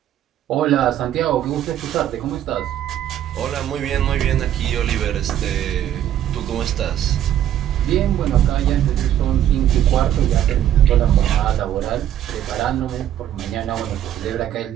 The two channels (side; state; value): left; quieter; 11.2 dB